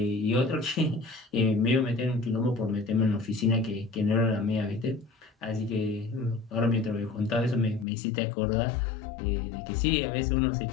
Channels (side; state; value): right; drops out; at 7.9 s